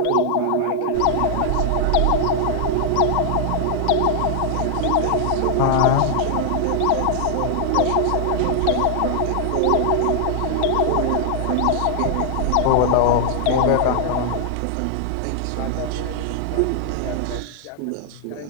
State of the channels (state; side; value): different; both; correlation 0.00